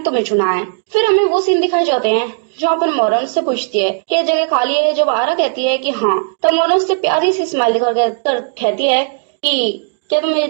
चुना है। फिर हमें वो सीन दिखाए जाते हैं जहाँ पर मोरन उससे पूछती है कि जगह खाली है। जब आरा कहती है कि हाँ, तब मोरन उससे प्यारी सी स्माइल दिखाकर कहती है कि क्या तुम मेरी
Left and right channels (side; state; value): left; silent; digital silence